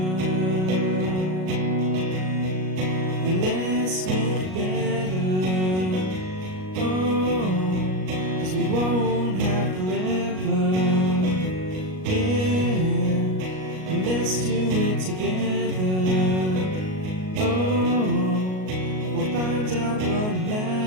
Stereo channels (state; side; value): late; left; 38 ms